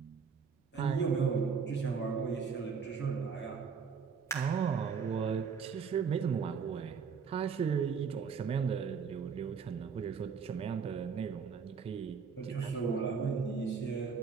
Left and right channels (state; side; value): quieter; left; 6.0 dB